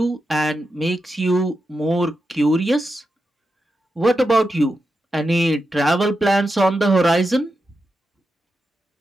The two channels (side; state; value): both; normal; correlation 0.88